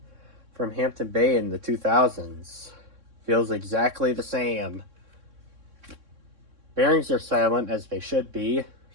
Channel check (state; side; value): late; left; 3.6 ms